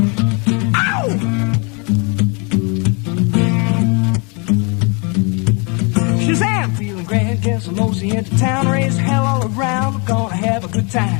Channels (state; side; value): quieter; right; 32.8 dB